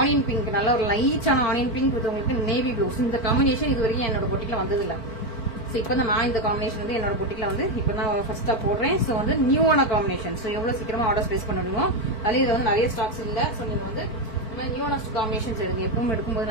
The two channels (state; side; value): late; right; 4.5 ms